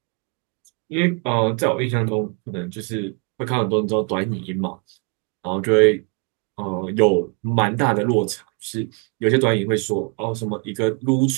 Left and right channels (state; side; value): quieter; left; 33.5 dB